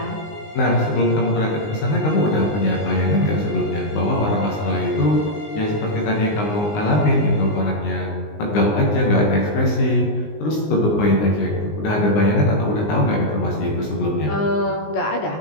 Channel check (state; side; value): late; right; 19 ms